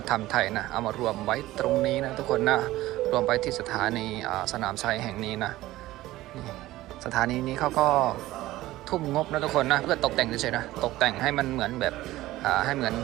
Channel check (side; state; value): left; quieter; 16.6 dB